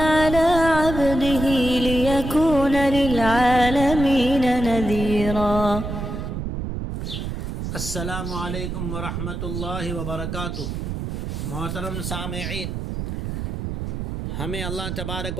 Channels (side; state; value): right; noise; rumble, 4 dB below the sound